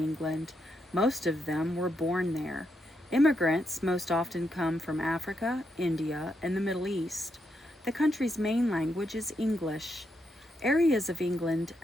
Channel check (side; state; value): both; normal; correlation 0.81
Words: Most of them were born there. Immigrants most often come from Africa, India, and the Middle East. The country's main language is English. Areas of England